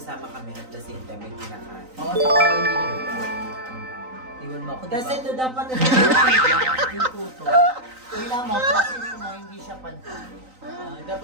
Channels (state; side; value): late; left; 3.9 ms